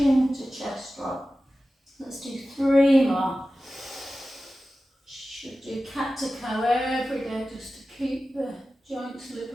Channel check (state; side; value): normal; both; correlation 0.95